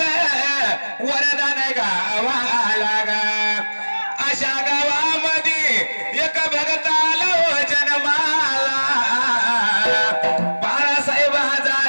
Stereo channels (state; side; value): inverted; both; correlation -1.00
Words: वरदान गावाला गा अशा गावामध्ये एक भगताला जन्माला बाळासाहेब